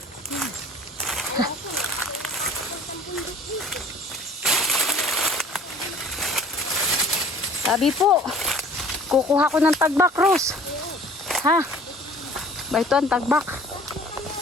Tabi po. Kukuha ko ng tagbak, Rose. Ha? Ba ito ang tagbak.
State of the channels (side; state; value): both; normal; correlation 0.49